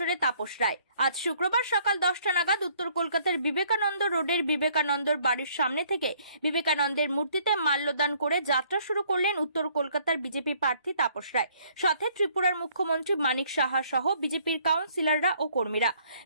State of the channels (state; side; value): inverted; both; correlation -0.63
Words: তাপস রায়। আজ শুক্রবার সকাল 10টা নাগাদ উত্তর কলকাতার বিবেকানন্দ রোডের বিবেকানন্দর বাড়ির সামনে থেকে বিবেকানন্দের মূর্তিতে মাল্যদান করে যাত্রা শুরু করলেন উত্তর কলকাতার বিজেপি প্রার্থী তাপস রায়। সাথে ত্রিপুরার মুখ্যমন্ত্রী মানিক সাহা সহ বিজেপির কাউন্সিলররা ও কর্মীরা।